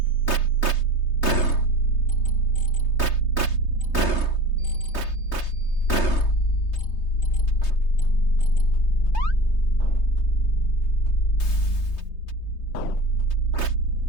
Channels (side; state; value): right; late; 3.2 ms